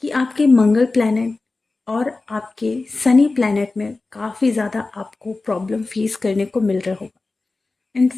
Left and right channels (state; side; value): quieter; right; 3.5 dB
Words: कि आपके मंगल प्लैनेट और आपके सनी प्लैनेट में काफ़ी ज़्यादा आपको प्रॉब्लम फेस करने को मिल रहा होगा।